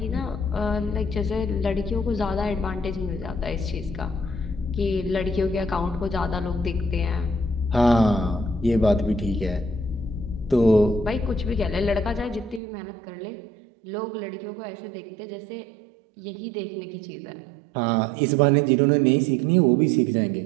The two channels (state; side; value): drops out; left; at 12.6 s